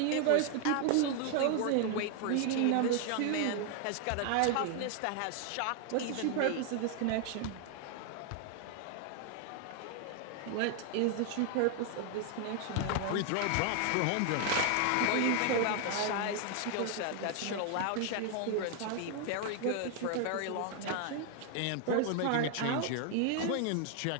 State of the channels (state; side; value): different; both; correlation 0.00